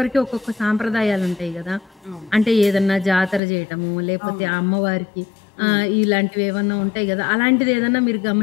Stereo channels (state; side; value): drops out; right; at 3.4 s